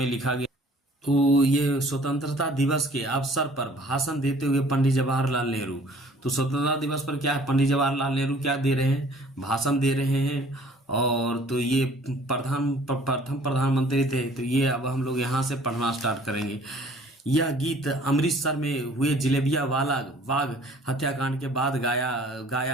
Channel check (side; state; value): both; normal; correlation 0.54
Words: लिखा गया। तो ये स्वतंत्रता दिवस के अवसर पर भाषण देते हुए पंडित जवाहरलाल नेहरू। तो स्वतंत्रता दिवस पर क्या है, पंडित जवाहरलाल नेहरू क्या दे रहे हैं, भाषण दे रहे हैं। और तो ये प्रथम प्रधानमंत्री थे। तो ये अब हम लोग यहाँ से पढ़ना स्टार्ट करेंगे। यह गीत अमृतसर में हुए जलेबिया वाला बाग हत्याकांड के बाद